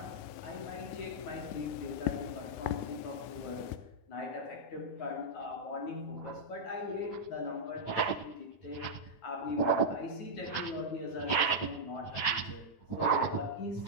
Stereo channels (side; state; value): right; late; 10 ms